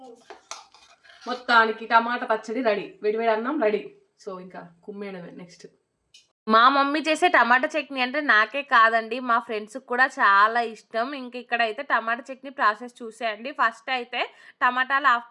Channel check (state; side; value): identical; both; correlation 1.00